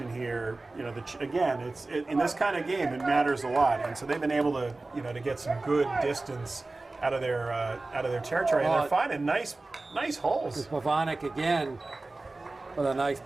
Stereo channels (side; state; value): left; quieter; 3.2 dB